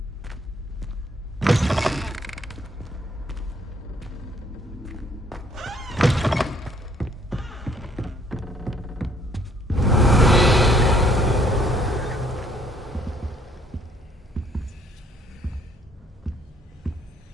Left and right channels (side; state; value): both; normal; correlation 0.64